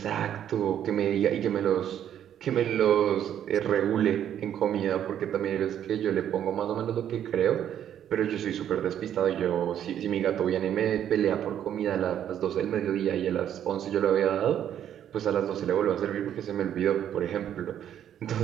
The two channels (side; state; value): left; quieter; 10.1 dB